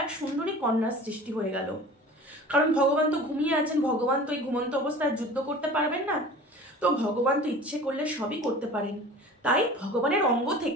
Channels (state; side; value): normal; both; correlation 0.41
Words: এক সুন্দরী কন্যার সৃষ্টি হয়ে গেল। কারণ ভগবান তো ঘুমিয়ে আছেন, ভগবান তো এই ঘুমন্ত অবস্থায় যুদ্ধ করতে পারবেন না, তো ভগবান তো ইচ্ছে করলে সবই করতে পারেন। তাই ভগবানের অঙ্গ